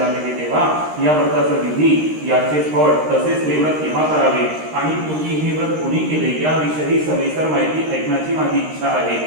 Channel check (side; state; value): left; late; 13 ms